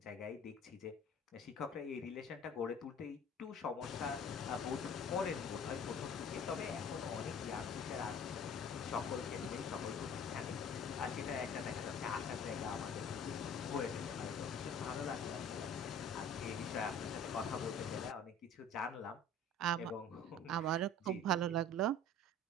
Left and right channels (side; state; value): both; normal; correlation 0.46